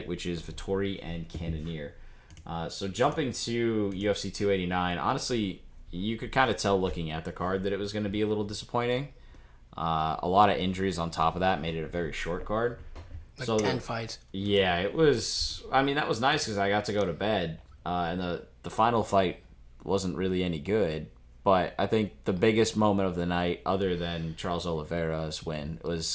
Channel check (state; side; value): identical; both; correlation 1.00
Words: which is Vettori and Cannonier. So jumping to UFC 289, honestly, you could kind of tell looking at the card that it was going to be a little disappointing. A lot of injuries on top of that made it a very short card. Like 10 fights. Yeah, it was. I mean, that was nice because I got to go to bed, and the final fight wasn't really any good. But I think the biggest moment of the night, other than Charles Oliveira's win,